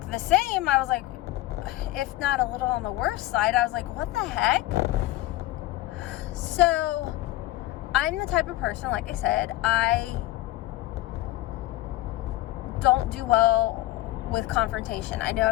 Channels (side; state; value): right; quieter; 16.8 dB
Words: the same, I was like, if not a little on the worst side, I was like, what the heck? So I'm the type of person, like I said, I don't do well with confrontation. I know